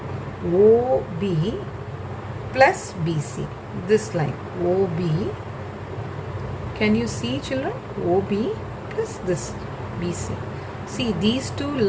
OB plus BC, this line, OB, can you see children? OB plus this BC. See, these two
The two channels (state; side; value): identical; both; correlation 1.00